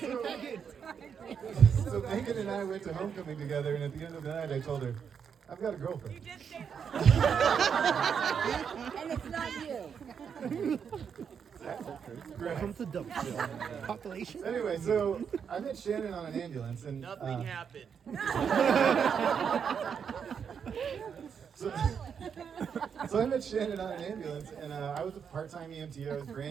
So Megan and I went to homecoming together, and at the end of the night, I told her, "I've got a girlfriend." You did say And it's not you. Welcome to Dumpsville. Population. Anyway, so I met Shannon on an ambulance, and Nothing happened. So I met Shannon on an ambulance, and I was a part-time EMT. I was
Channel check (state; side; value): quieter; left; 7.1 dB